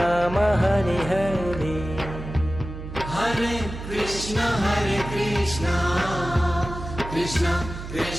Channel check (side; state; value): right; noise; hum, 10 dB below the sound